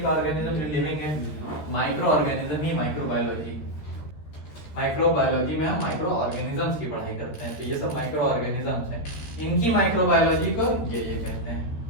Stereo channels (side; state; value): right; late; 13 ms